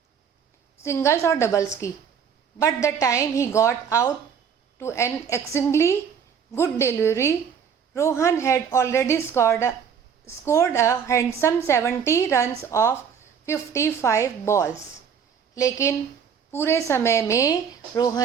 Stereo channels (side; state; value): left; quieter; 7.2 dB